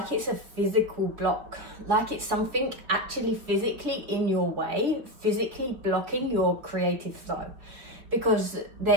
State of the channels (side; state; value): left; late; 5.0 ms